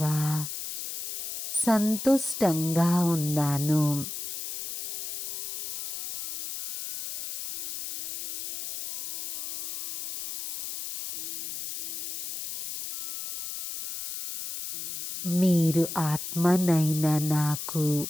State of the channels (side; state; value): left; noise; hiss, 5 dB below the sound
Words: సంతుష్టంగా ఉన్నాను. మీరు ఆత్మనైన నాకు